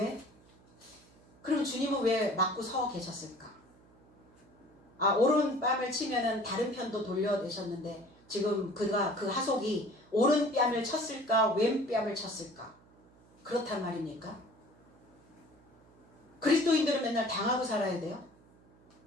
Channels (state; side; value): noise; right; hum, 28 dB below the sound